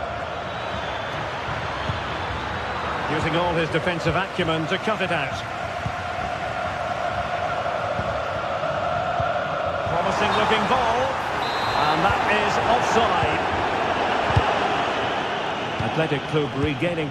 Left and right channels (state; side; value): identical; both; correlation 1.00